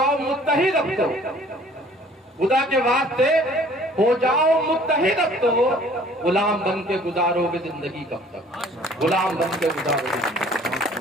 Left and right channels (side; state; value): both; normal; correlation 0.54